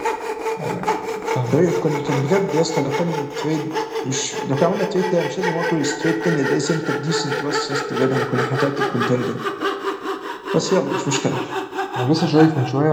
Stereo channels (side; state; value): both; identical; correlation 1.00